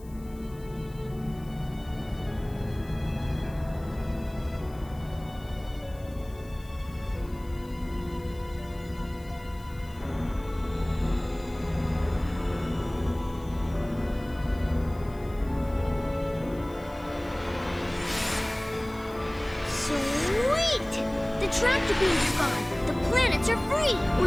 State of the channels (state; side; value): noise; left; hiss, 25 dB below the sound